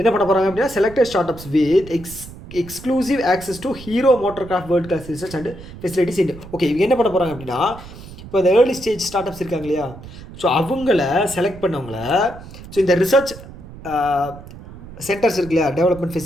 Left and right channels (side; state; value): right; noise; rumble, 16 dB below the sound